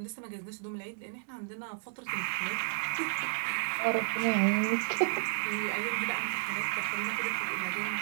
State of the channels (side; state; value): left; silent; digital silence